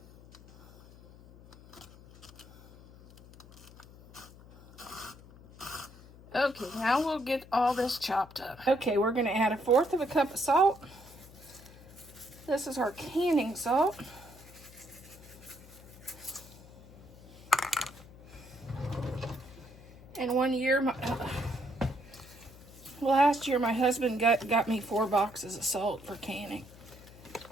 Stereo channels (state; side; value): noise; left; hum, 20 dB below the sound